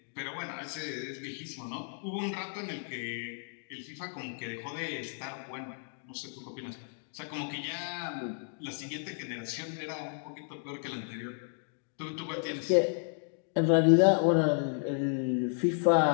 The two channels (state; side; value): silent; right; 56 dB below the other